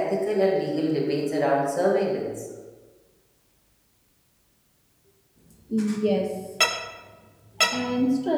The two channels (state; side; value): identical; both; correlation 1.00